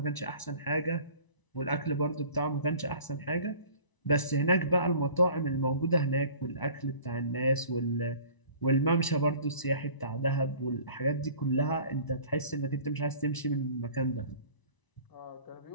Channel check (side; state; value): right; late; 1.0 ms